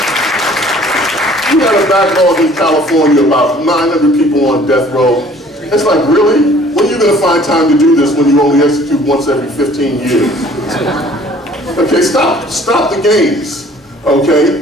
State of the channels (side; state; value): both; normal; correlation 0.54